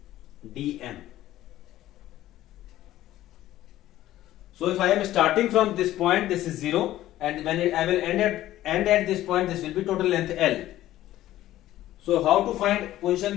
dm. So if I am starting from this point, this is 0, and when I will end at this point, this will be total length L. So how to find position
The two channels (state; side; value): quieter; right; 14.3 dB